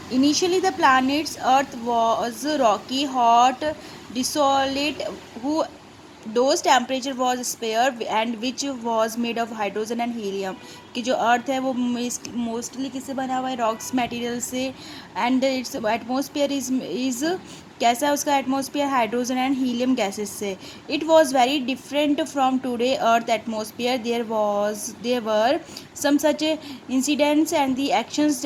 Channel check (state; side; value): identical; both; correlation 1.00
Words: Initially, the planet's Earth was rocky, hot, desolate, whose temperature was spare and which was made of hydrogen and helium. कि जो अर्थ है वो mostly किससे बना हुआ है, rocks material से. And its atmosphere is कैसा है उसका atmosphere, hydrogen and helium gases से. It was very different from today earth atmosphere. There were some such incidents and the actions